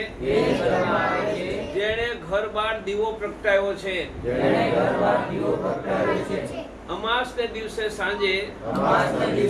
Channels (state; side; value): identical; both; correlation 1.00